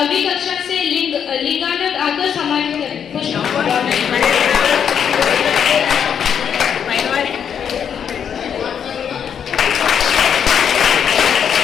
कक्षा से लिंगानंद आकर सम्मानित करें।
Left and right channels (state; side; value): quieter; right; 8.0 dB